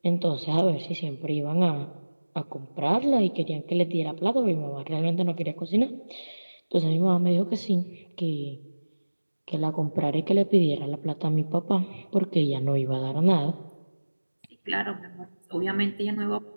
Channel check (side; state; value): both; inverted; correlation -1.00